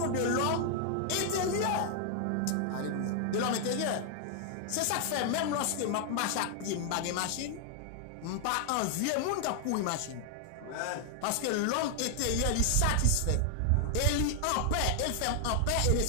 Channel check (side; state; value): both; different; correlation 0.00